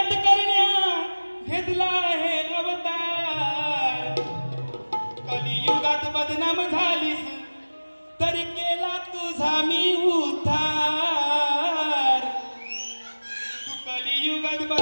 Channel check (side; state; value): both; inverted; correlation -1.00